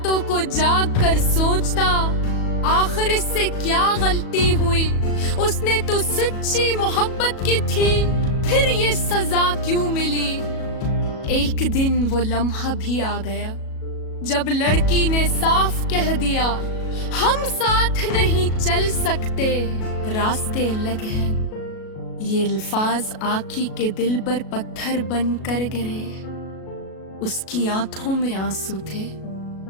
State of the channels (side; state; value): right; late; 37 ms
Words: को जाग कर सोचता, आखिर इससे क्या गलती हुई। उसने तो सच्ची मोहब्बत की थी, फिर ये सजा क्यों मिली। एक दिन वो लम्हा भी आ गया जब लड़की ने साफ कह दिया, हम साथ नहीं चल सकते, रास्ते अलग हैं। ये अल्फाज आखी के दिल पर पत्थर बन कर गिरे। उसकी आंखों में आंसू थे,